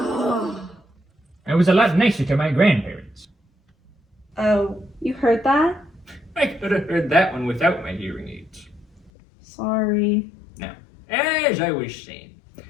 was a lot nicer to my grandparents. Oh, you heard that? I could have heard that one without my hearing aids. Sorry. Now, as I was saying,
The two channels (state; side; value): drops out; right; at 9.1 s